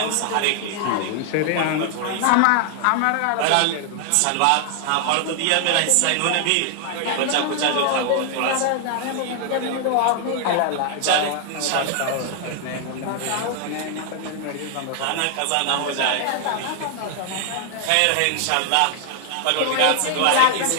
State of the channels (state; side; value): different; both; correlation 0.00